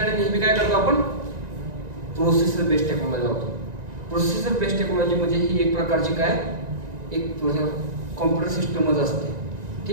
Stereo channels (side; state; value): left; late; 1.9 ms